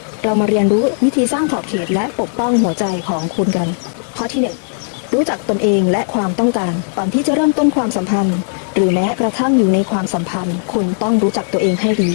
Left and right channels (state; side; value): silent; right; digital silence